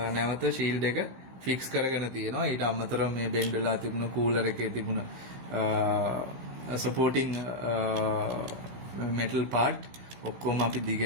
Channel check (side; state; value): left; late; 15 ms